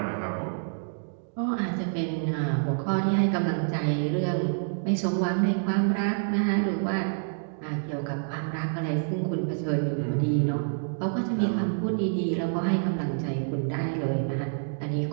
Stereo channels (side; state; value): left; silent; digital silence